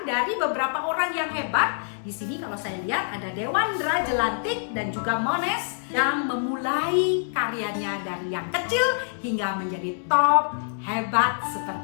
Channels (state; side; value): silent; right; digital silence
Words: dari beberapa orang yang hebat. Di sini kalau saya lihat ada Dewandra Jelantik dan juga Mones yang memulai karyanya dari yang kecil hingga menjadi top hebat